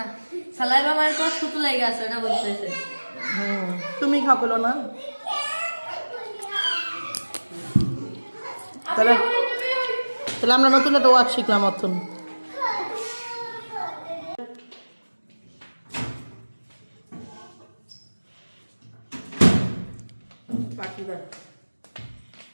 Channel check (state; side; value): inverted; both; correlation -1.00